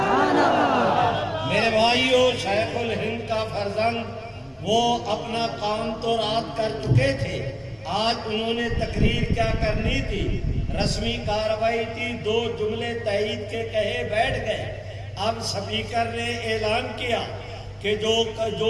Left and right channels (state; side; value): identical; both; correlation 1.00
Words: میرے بھائیوں، شیخ الہند کا فرزند، وہ اپنا کام تو رات کر چکے تھے، آج انہوں نے تقریر کیا کرنی تھی، رسمی کارروائی تھی، 2 جملے تائید کے کہے بیٹھ گئے۔ اب سپیکر نے اعلان کیا کہ